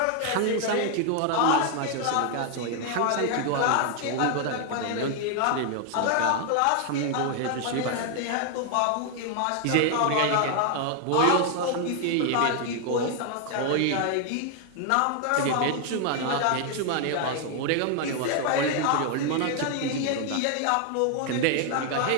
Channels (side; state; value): both; different; correlation 0.00